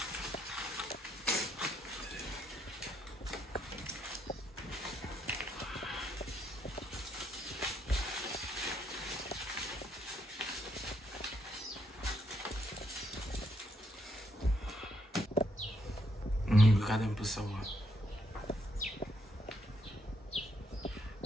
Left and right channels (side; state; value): both; normal; correlation 0.75